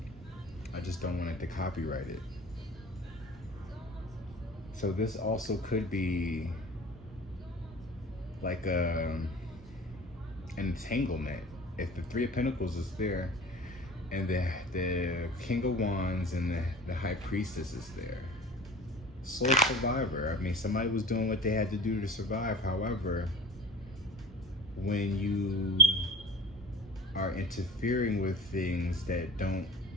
I just don't want it to copyright it. So this also could be like an entanglement. If the 3 of Pentacles is there, and the King of Wands and the High Priestess is there. Soul survivor. Somebody was doing what they had to do to survive. However, when you are interfering with things that don't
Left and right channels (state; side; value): normal; both; correlation 0.38